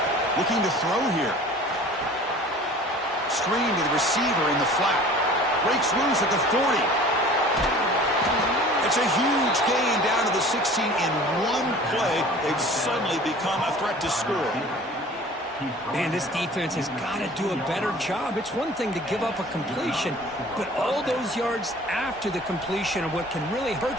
Looking to throw here. Screen to the receiver in the flat. Breaks loose at the 40. It's a huge gain down to the 16 in one play. They've suddenly become a threat to score. Man, this defense has got to do a better job. It's one thing to give up a completion, but all those yards after the completion are what can really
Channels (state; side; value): normal; both; correlation 0.45